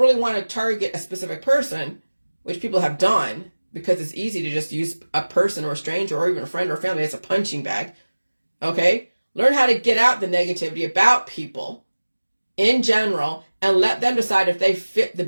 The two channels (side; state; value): both; inverted; correlation -1.00